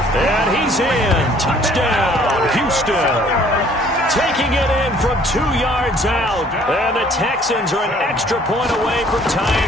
And he's in. Touchdown, Houston. Taking it in from 2 yards out. And the Texans are an extra point away from tying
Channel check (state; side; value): normal; both; correlation 0.58